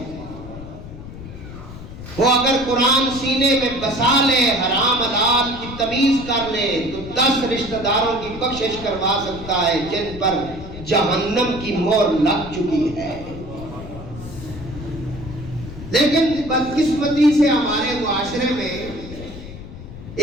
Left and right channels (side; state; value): left; noise; rumble, 13 dB below the sound